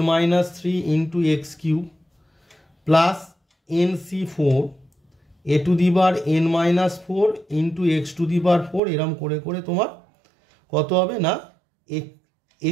3 × x³ plus nc4 a⁴n - 4 × x⁴, এরম করে করে তোমার কত হবে না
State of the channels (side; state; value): left; drops out; at 8.8 s